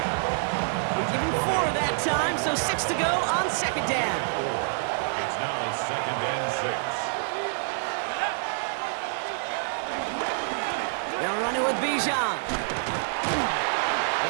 Give him 4 that time, so 6 to go on 2nd down. It's now 2nd and 6. They're running with Bijan.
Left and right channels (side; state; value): left; silent; digital silence